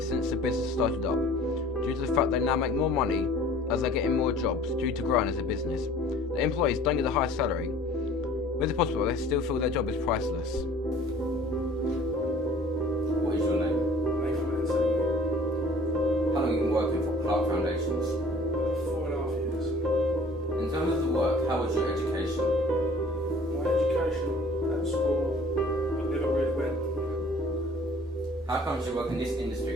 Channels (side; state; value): both; normal; correlation 0.50